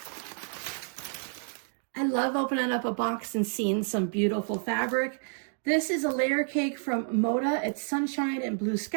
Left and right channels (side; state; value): left; silent; 57 dB below the other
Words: I love opening up a box and seeing some beautiful fabric. This is a layer cake from Moda. It's Sunshine and Blue